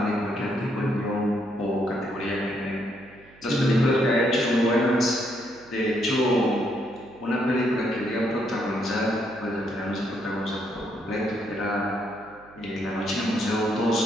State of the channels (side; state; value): right; noise; hum, 25 dB below the sound